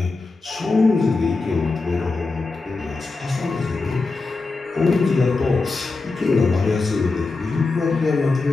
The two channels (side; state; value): right; quieter; 3.8 dB